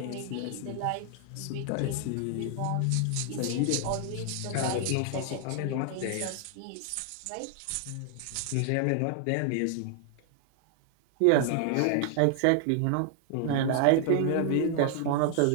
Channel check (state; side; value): different; both; correlation 0.00